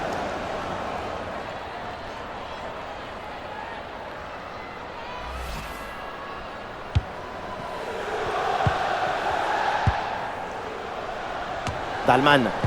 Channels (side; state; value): both; identical; correlation 1.00